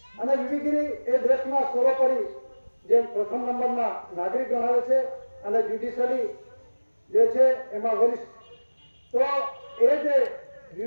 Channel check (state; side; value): inverted; both; correlation -1.00